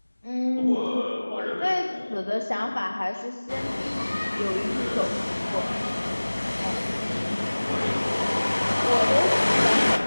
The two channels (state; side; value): inverted; both; correlation -1.00